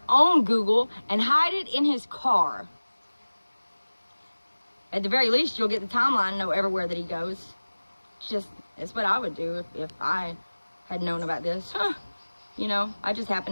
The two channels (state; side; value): inverted; both; correlation -1.00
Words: own Google, and hide it in his car. At the very least, you'll get the timeline and know everywhere that he goes. It's what I would do if I had known about this. You know, I just